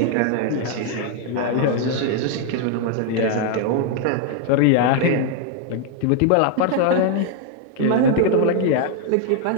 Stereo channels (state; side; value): different; both; correlation 0.00